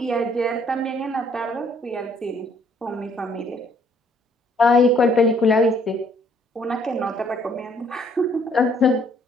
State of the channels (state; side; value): normal; both; correlation 0.64